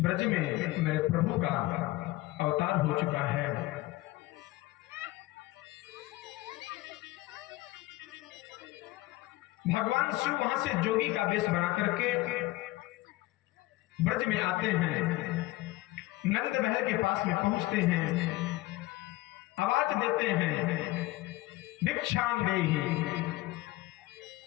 ब्रज में मेरे प्रभु का अवतार हो चुका है। भगवान शिव वहां से जोगी का वेश बना करके ब्रज में आते हैं, नंद महल के पास में पहुंचते हैं, आवाज देते हैं भिक्षाम देहि।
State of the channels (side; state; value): right; quieter; 18.8 dB